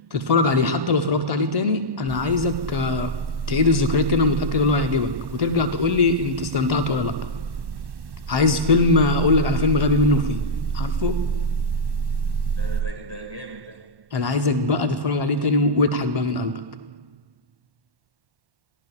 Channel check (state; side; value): late; left; 1.1 ms